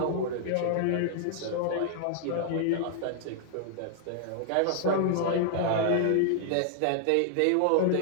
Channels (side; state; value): both; different; correlation -0.01